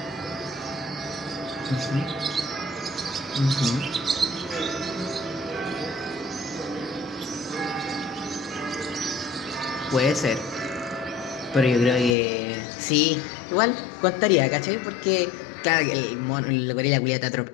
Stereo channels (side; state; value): right; drops out; at 12.2 s